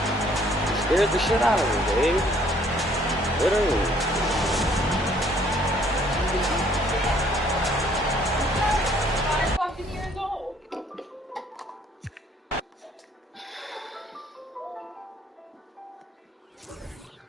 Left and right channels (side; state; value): both; normal; correlation 0.62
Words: Scared the shit out of her, Dave. Literally.